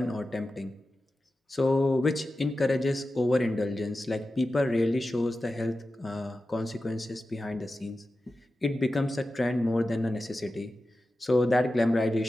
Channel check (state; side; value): normal; both; correlation 0.93